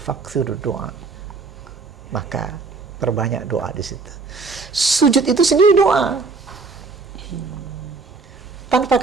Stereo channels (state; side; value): quieter; left; 4.2 dB